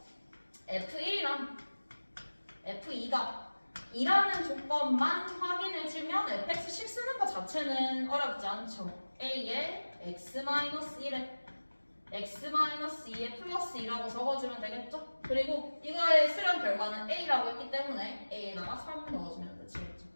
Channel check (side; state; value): both; inverted; correlation -1.00